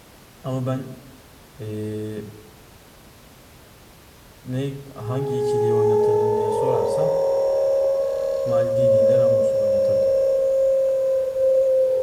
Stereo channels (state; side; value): identical; both; correlation 1.00